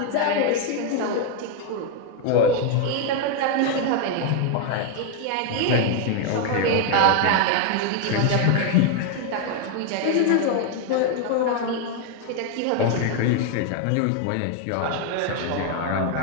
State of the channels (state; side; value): different; both; correlation 0.00